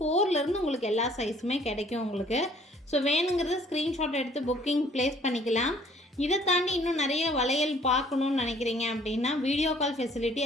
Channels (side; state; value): both; normal; correlation 0.58